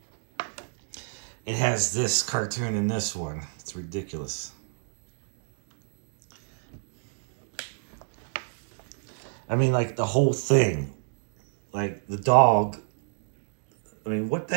It has this cartoon in this one. It's ridiculous. I mean, like the whole thing. Like the dog. I mean, what the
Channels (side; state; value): left; silent; digital silence